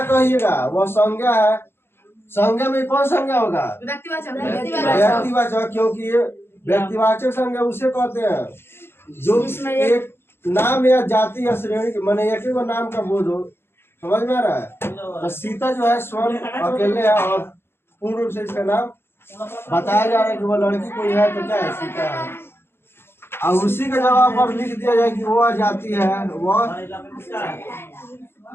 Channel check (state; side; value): late; right; 0.11 ms